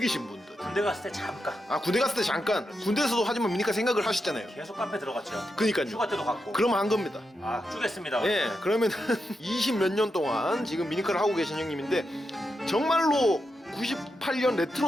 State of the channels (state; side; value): normal; both; correlation 0.86